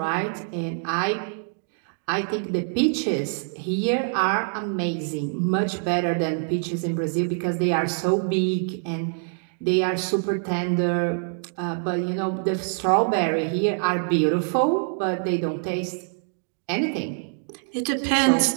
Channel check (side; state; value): left; silent; 62 dB below the other